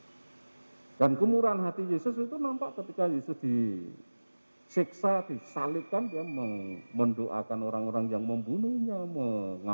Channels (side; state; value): both; inverted; correlation -1.00